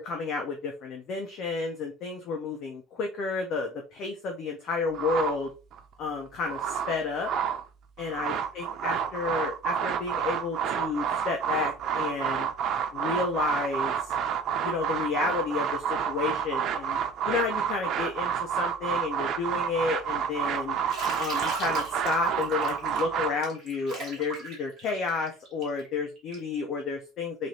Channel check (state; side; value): normal; both; correlation 0.42